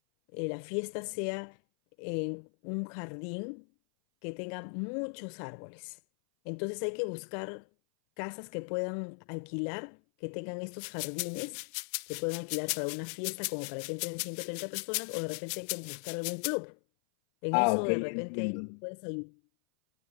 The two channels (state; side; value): silent; right; 53 dB below the other